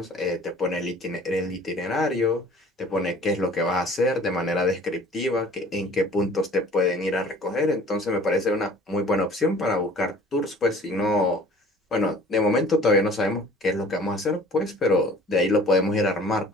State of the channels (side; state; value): both; normal; correlation 0.48